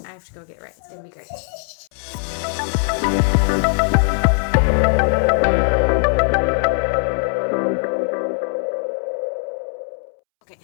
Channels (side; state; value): right; silent; 66 dB below the other